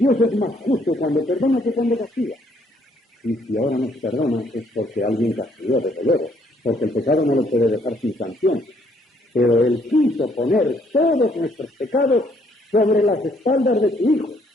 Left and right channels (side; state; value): both; normal; correlation 0.67